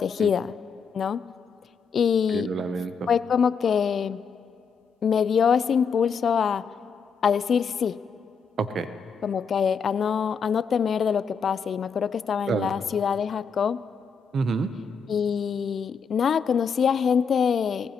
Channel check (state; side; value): quieter; right; 5.8 dB